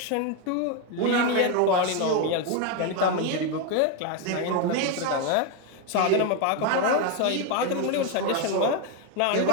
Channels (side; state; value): both; different; correlation 0.02